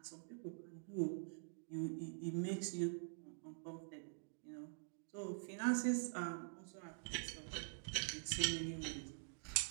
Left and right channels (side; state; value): left; silent; digital silence